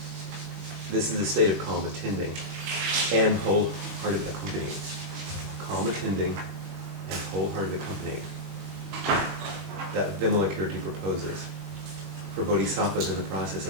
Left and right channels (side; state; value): left; late; 21 ms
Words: This is a state of calm attending and wholehearted accompanying. Calm attending and wholehearted accompanying that Vimalakirti proposes for bodhisattvas in the process